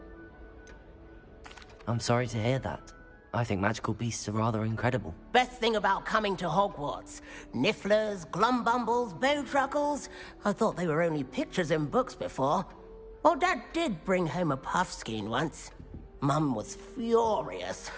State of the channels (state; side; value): identical; both; correlation 1.00